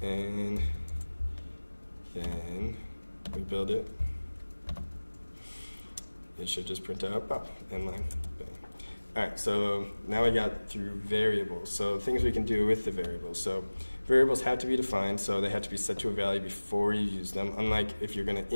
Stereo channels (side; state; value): both; inverted; correlation -1.00